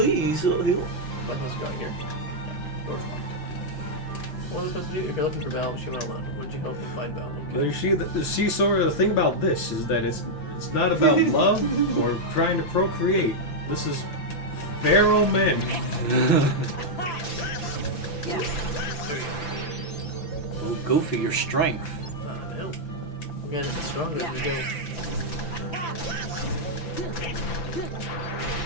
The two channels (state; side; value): late; right; 5.9 ms